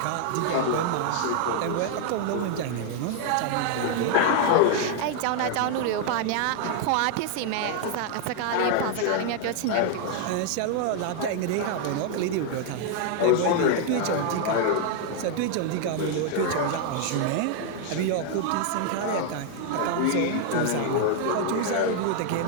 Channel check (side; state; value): both; different; correlation 0.00